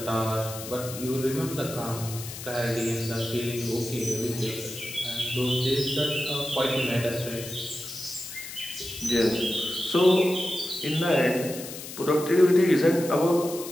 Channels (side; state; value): left; noise; hiss, 11 dB below the sound